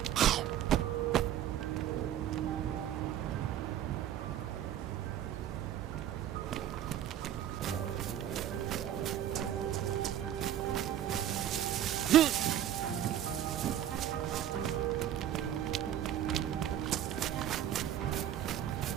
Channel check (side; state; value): left; quieter; 11.0 dB